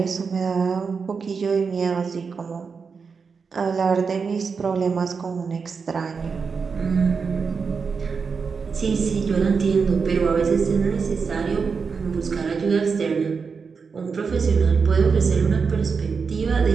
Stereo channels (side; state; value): left; quieter; 5.4 dB